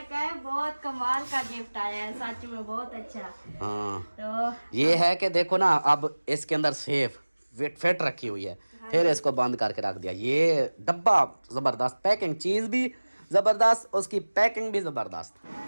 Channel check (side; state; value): both; inverted; correlation -1.00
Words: कहा बहुत कमाल का गिफ्ट आया है, सच में बहुत अच्छा। हाँ तो ये है कि देखो ना अब इसके अंदर सेफ फिट रखी हुई है, फिर इसको बंद करके रख दिया। ये डब्बा जबरदस्त, पैकिंग चीज भी जबरदस्त, उसकी पैकिंग भी जबरदस्त।